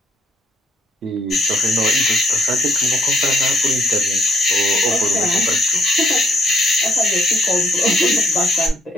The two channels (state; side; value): normal; both; correlation 0.69